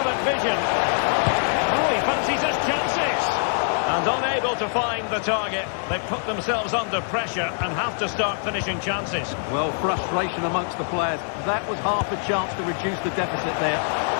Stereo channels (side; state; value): right; silent; 58 dB below the other